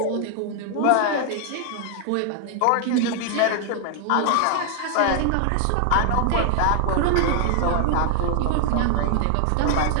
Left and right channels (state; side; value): different; both; correlation 0.00